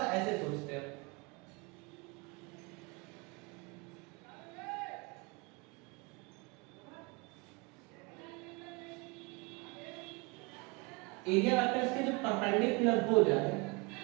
ऐसे सोचते हैं। एरिया वेक्टर्स के जो परपेंडिकुलर हो जाए,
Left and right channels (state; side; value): quieter; left; 28.1 dB